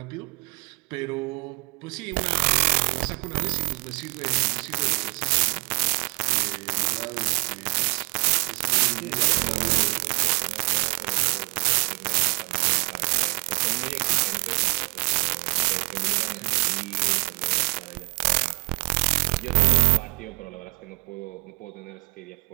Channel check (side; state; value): left; quieter; 32.6 dB